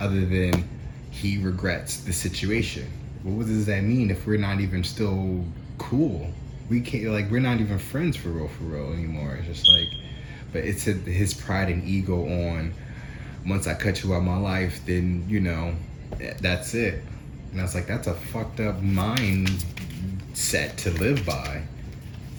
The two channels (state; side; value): identical; both; correlation 1.00